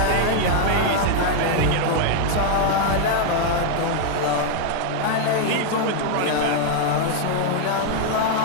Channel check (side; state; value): both; different; correlation 0.00